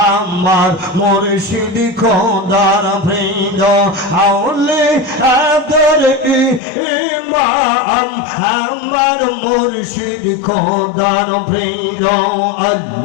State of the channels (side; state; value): right; drops out; at 6.6 s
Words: আমার মুর্শিদ খোদার প্রিয় আউলে আদর ইমাম আমার মুর্শিদ খোদার প্রিয়